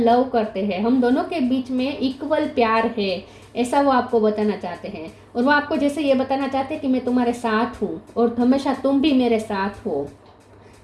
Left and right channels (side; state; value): both; identical; correlation 1.00